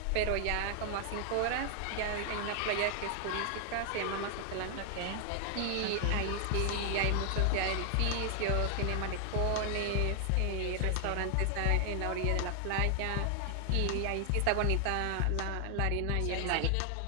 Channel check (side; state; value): both; different; correlation 0.00